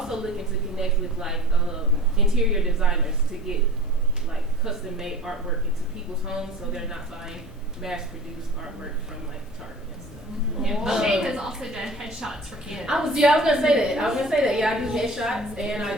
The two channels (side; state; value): both; normal; correlation 0.41